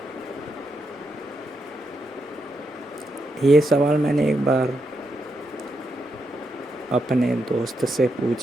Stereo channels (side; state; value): both; normal; correlation 0.82